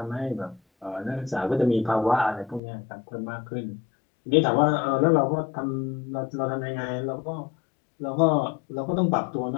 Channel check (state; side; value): drops out; right; at 2.6 s